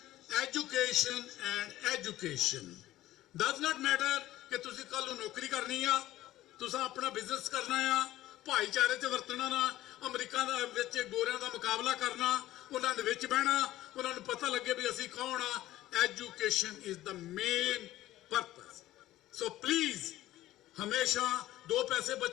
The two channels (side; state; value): right; quieter; 15.0 dB